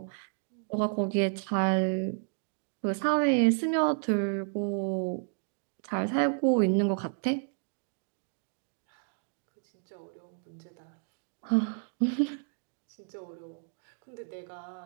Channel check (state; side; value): silent; left; 57 dB below the other